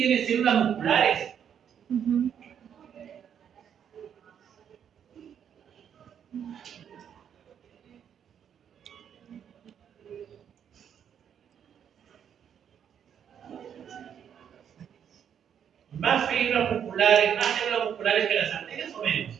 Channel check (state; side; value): quieter; left; 8.6 dB